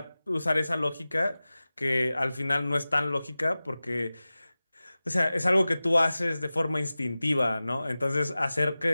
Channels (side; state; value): both; inverted; correlation -0.96